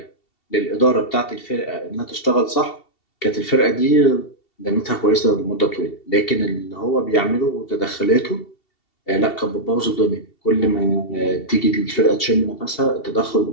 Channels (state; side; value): late; right; 2.7 ms